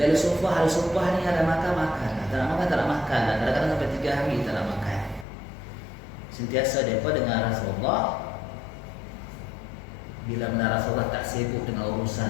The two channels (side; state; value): right; drops out; at 5.2 s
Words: ada sufah ni ada makan. Tak nak makan. Kadang-kadang sampai 3 hari tak nak makan. Sentiasa mereka dengan Rasulullah. Bila mana Rasulullah tak sibuk dengan